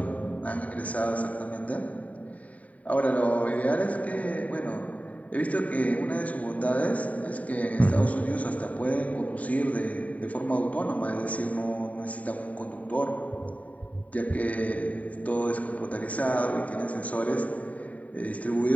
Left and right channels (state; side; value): late; right; 0.069 ms